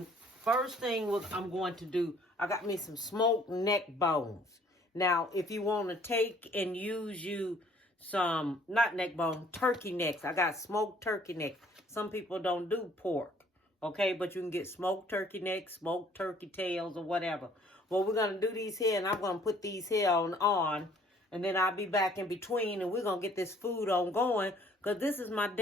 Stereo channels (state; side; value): normal; both; correlation 0.58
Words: first thing I'm going to do, I got me some smoked neck bones. Now, if you want to take and use some, not neck bone, turkey necks. I got smoked turkey necks. Some people don't do pork. Okay, but you can get smoked turkey necks, smoked turkey tails, or whatever. Well, we're going to do these here, and I'm going to put these here on, and then I'll be back in between, and we're going to get this food on going, because this is my